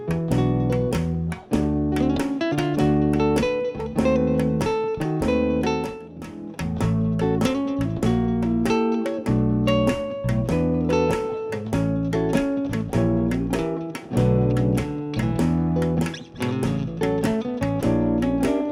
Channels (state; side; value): identical; both; correlation 1.00